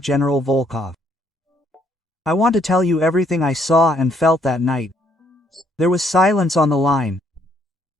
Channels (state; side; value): normal; both; correlation 0.69